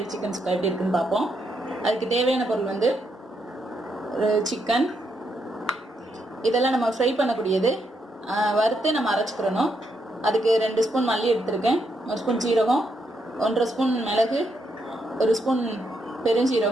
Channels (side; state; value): both; normal; correlation 0.79